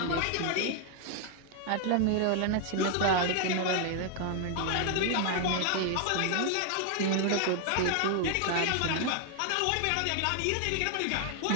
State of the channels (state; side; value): different; both; correlation 0.00